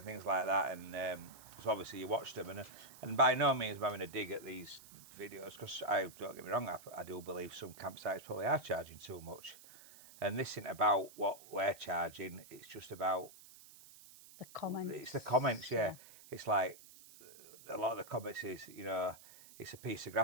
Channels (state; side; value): noise; right; hiss, 19 dB below the sound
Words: things like that, and so obviously you watched them, and by no means am I having a dig at these videos, because I don't get me wrong, I do believe some campsites probably are charging too much, and this isn't about what we're charging. It's just about The comments. It's the comments, yeah. It's like a lot of the comments is, it's a piece of